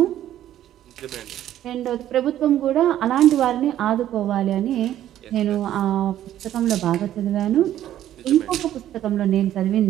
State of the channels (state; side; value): quieter; left; 12.1 dB